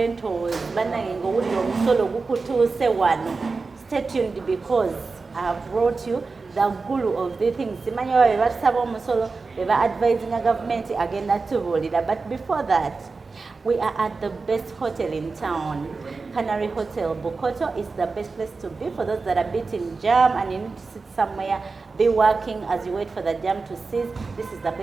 Stay tuned because I have brought you the guru of the things. We are advising a government again that. But before that, we are at the best hotel in town, Canary Hotel. Bokoto is the best place to be for those that are beating jam and you need to sit somewhere, be working as you wait for the jam to cease. This is the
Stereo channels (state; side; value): quieter; left; 4.2 dB